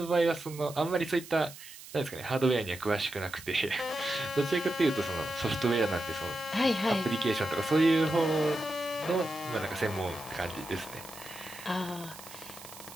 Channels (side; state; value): right; noise; hiss, 16 dB below the sound